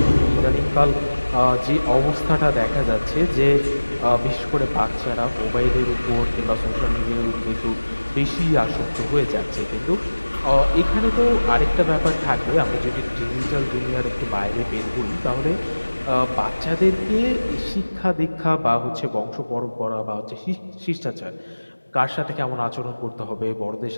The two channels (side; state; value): both; inverted; correlation -1.00